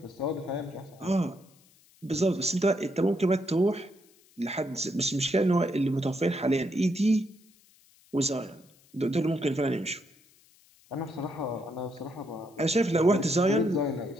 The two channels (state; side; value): noise; left; hiss, 30 dB below the sound